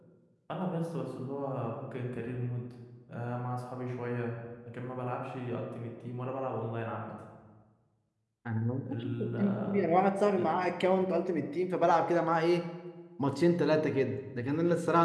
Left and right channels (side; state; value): both; identical; correlation 1.00